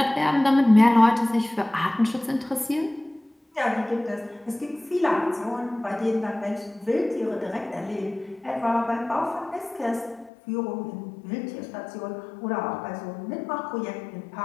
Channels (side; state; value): right; drops out; at 10.3 s